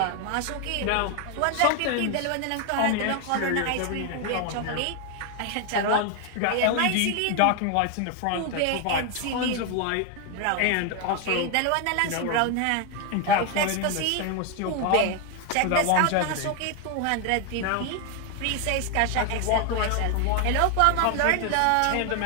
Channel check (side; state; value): both; different; correlation 0.01